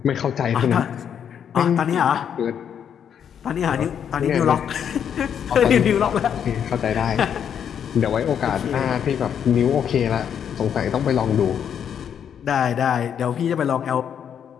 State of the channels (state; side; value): quieter; right; 8.4 dB